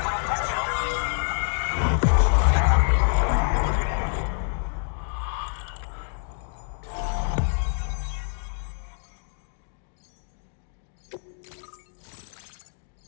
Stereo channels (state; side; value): silent; right; 60 dB below the other